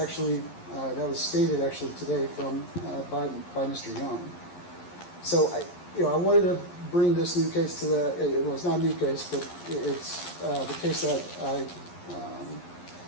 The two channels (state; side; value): late; right; 11 ms